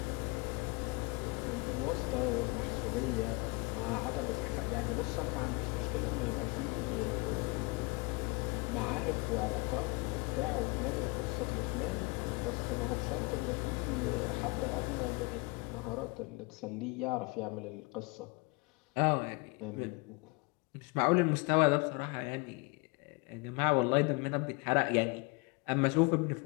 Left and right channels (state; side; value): quieter; right; 27.5 dB